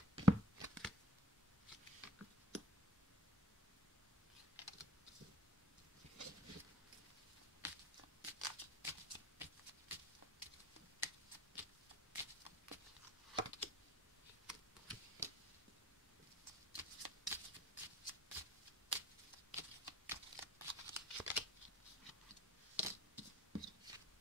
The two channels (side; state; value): both; normal; correlation 0.48